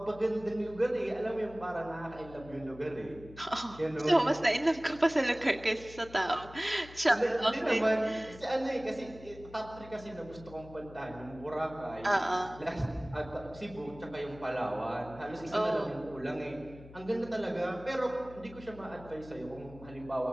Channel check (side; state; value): left; noise; hum, 18 dB below the sound